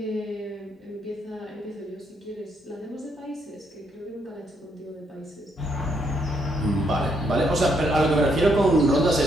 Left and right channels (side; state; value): both; normal; correlation 0.74